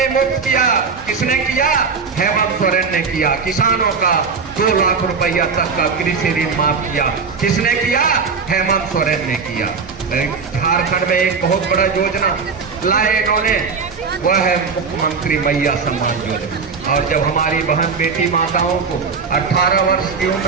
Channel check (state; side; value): quieter; left; 5.3 dB